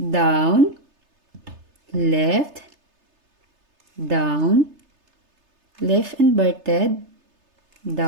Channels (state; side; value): late; left; 3.3 ms